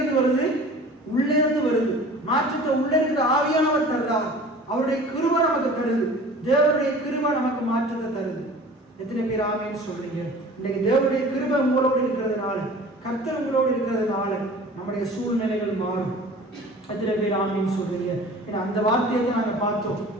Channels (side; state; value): both; normal; correlation 0.43